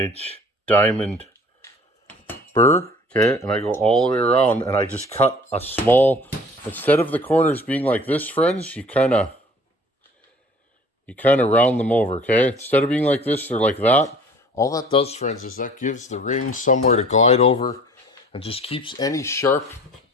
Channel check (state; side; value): normal; both; correlation 0.49